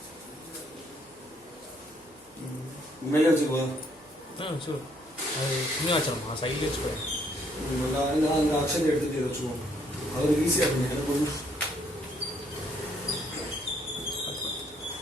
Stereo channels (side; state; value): both; normal; correlation 0.68